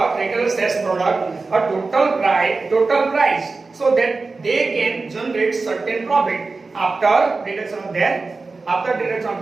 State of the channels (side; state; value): left; quieter; 3.9 dB